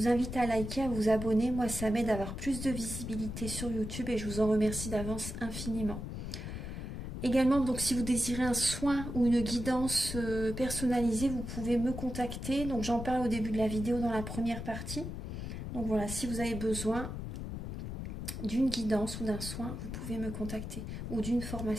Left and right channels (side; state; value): left; noise; rumble, 6 dB below the sound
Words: invite à liker, à vous abonner. Moi, ça m'aide à avoir plus de visibilité sur YouTube et je vous en remercie d'avance infiniment. Également, donc, si vous désirez un soin ou une guidance personnalisée, vous pouvez me contacter. Donc, j'en parle au début de la vidéo dans la première partie. Donc, voilà, si vous avez besoin d'une guidance ou d'un soin, vous pouvez me contacter ou d'une